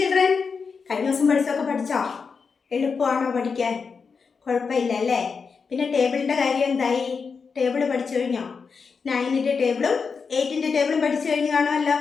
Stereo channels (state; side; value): quieter; right; 5.4 dB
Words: കഴിഞ്ഞ ദിവസം പഠിച്ചോ? എളുപ്പമാണോ പഠിക്കാൻ? കുഴപ്പമില്ല അല്ലേ? പിന്നെ ടേബിളിൻ്റെ കാര്യം എന്തായി? ടേബിൾ പഠിച്ചു കഴിഞ്ഞോ? 9ൻ്റെ ടേബിളും 8ൻ്റെ ടേബിളും പഠിച്ചു കഴിഞ്ഞ് കാണുമല്ലോ